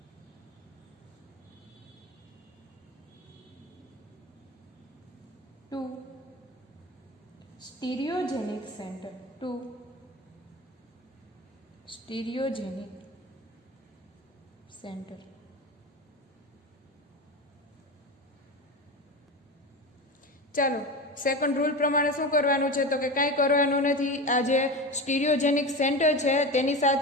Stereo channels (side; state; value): both; normal; correlation 0.25